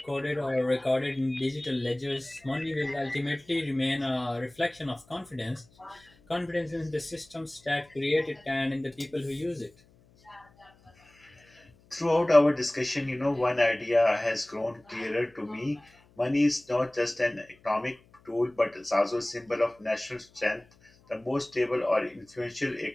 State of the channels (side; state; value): left; noise; hum, 30 dB below the sound